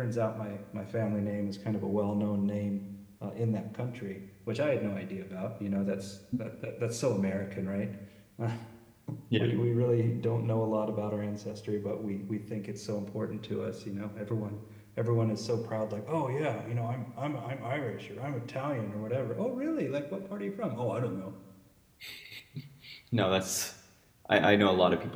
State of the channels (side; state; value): both; identical; correlation 1.00